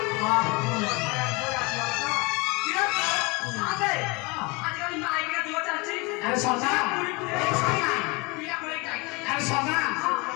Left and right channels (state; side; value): quieter; right; 26.8 dB